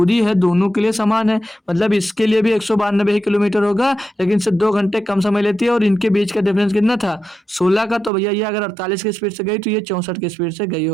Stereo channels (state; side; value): drops out; left; at 8.1 s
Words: है दोनों के लिए समान है, मतलब इसके लिए भी 192 ही किलोमीटर होगा, लेकिन इससे 2 घंटे कम समय लेती है। और इनके बीच का डिफरेंस कितना था? 16 का। तो भैया ये अगर 48 की स्पीड से गई तो ये 64 की स्पीड से गई